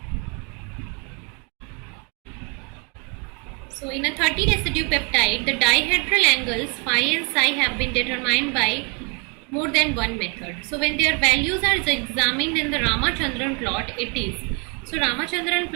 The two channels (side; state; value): left; quieter; 33.9 dB